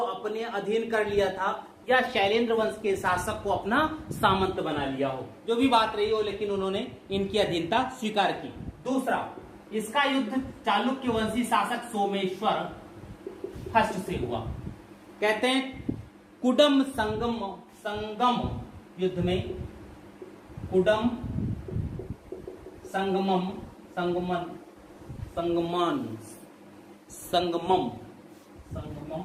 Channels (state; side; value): identical; both; correlation 1.00